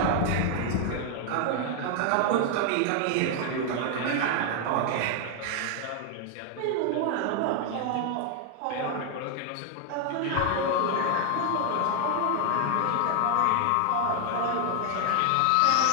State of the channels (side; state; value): both; different; correlation 0.00